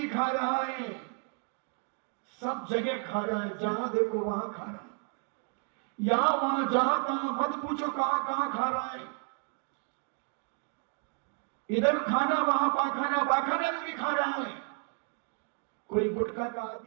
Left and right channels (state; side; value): quieter; left; 38.9 dB